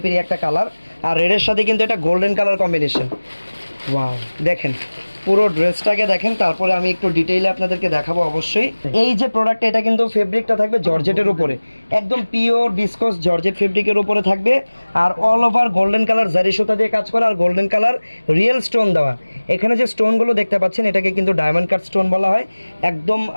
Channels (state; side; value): inverted; both; correlation -1.00